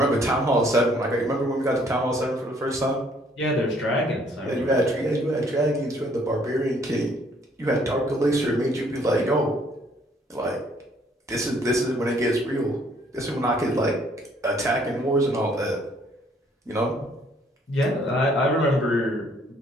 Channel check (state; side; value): normal; both; correlation 0.63